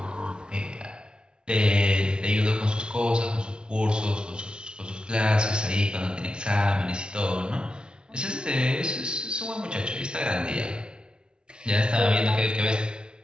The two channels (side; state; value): left; late; 0.054 ms